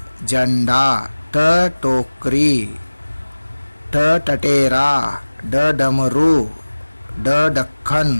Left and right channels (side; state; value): both; inverted; correlation -1.00